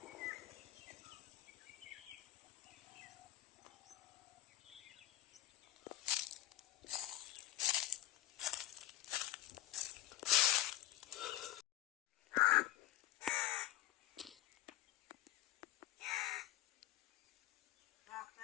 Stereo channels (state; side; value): quieter; right; 14.6 dB